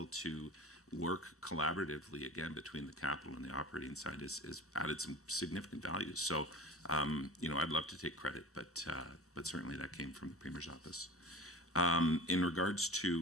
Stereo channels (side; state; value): both; normal; correlation 0.36